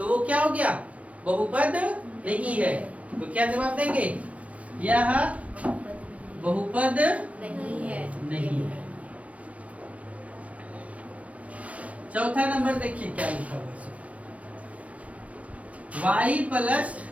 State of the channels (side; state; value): left; late; 0.066 ms